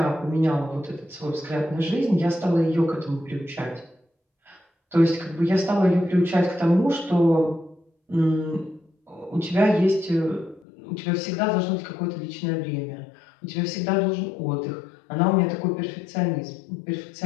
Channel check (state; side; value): drops out; right; at 10.7 s